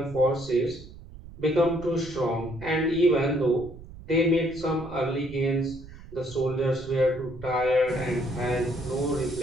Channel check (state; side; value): noise; right; rumble, 16 dB below the sound